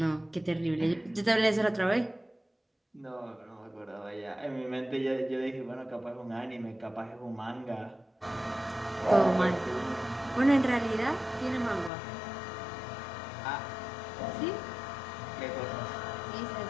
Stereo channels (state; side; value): drops out; right; at 11.9 s